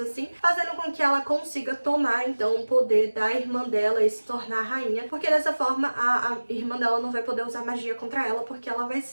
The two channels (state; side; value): inverted; both; correlation -1.00